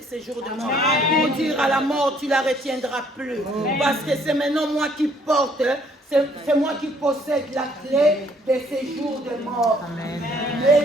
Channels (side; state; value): both; normal; correlation 0.63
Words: séjours de mort. Pour dire à la mort, tu ne la retiendras plus. Parce que c'est maintenant moi qui porte, c'est moi qui possède la clé des séjours de mort.